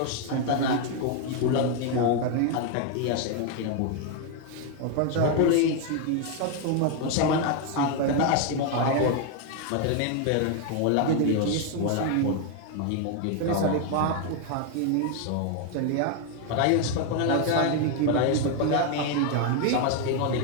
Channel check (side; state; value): both; different; correlation 0.01